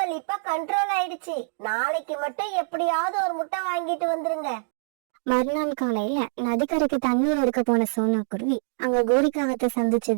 இப்ப கண்ட்ரோல் ஆயிடுச்சு. நாளைக்கு மட்டும் எப்படியாவது ஒரு முட்டை வாங்கிட்டு வந்துருங்க. மறுநாள் காலையில நதிக்கரைக்கு தண்ணீர் எடுக்க போன சோனா குருவி அங்க கோரிக்காகத்தை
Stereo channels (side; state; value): left; silent; digital silence